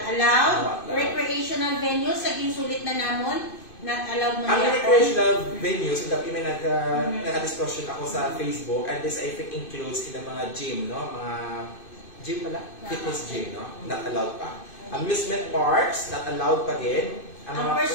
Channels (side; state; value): right; late; 2.5 ms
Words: allowed. Recreational venues, saging sulit na namon, not allowed mo ang recreational venues, may nag-discussion ako sa Facebook, and this I think includes in the mga gym, no? Mga gym pala? Fitness gym, no? Not allowed pa. Amusement parks, not allowed pa din. Ang